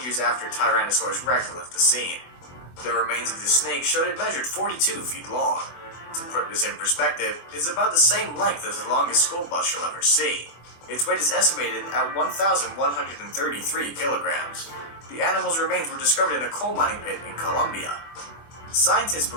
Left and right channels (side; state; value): right; late; 24 ms